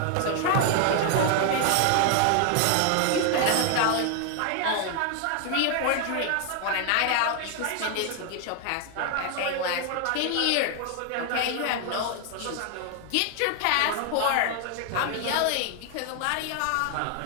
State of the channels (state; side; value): different; both; correlation 0.00